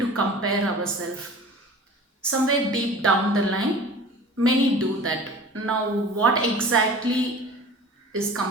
to compare ourselves. Somewhere deep down the line, many do that. Now, what exactly is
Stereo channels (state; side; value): normal; both; correlation 0.41